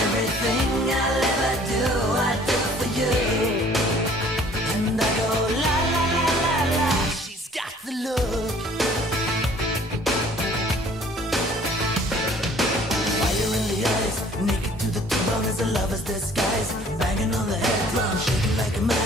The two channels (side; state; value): both; normal; correlation 0.54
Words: I'll ever do, I do for you. And I go la la la la la. She's got the look. Fire in the eyes, naked to the bone as a lover's disguise. Banging on the head drum, shaking like a